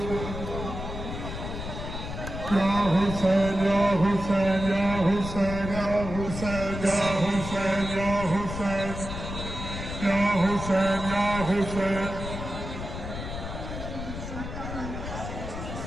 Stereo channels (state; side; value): noise; left; rumble, 7 dB below the sound